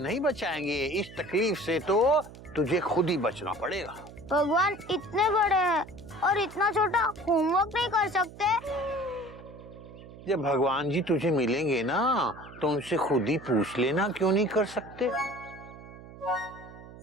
बचाएंगे, इस तकलीफ से तो तुझे खुद ही बचना पड़ेगा। भगवान इतने बड़े हैं और इतना छोटा होमवर्क नहीं कर सकते। जब भगवान जी तुझे मिलेंगे ना, तो उनसे खुद ही पूछ लेना क्यों नहीं कर सकते।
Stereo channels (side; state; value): right; noise; hum, 17 dB below the sound